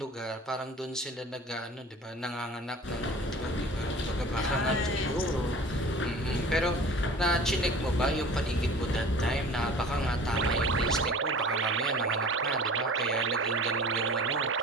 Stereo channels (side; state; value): both; normal; correlation 0.42